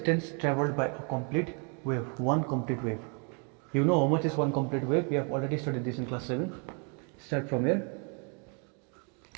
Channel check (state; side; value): quieter; left; 37.8 dB